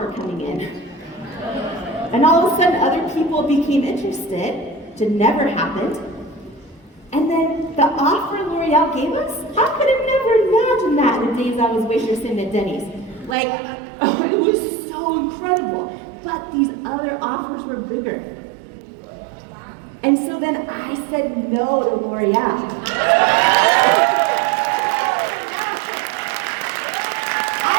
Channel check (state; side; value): drops out; left; at 13.4 s